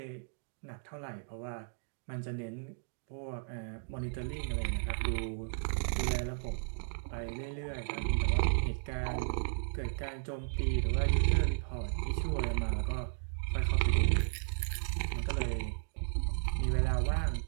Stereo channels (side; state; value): left; silent; digital silence